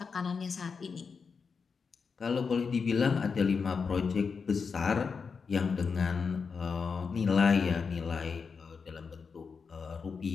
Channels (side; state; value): right; quieter; 5.4 dB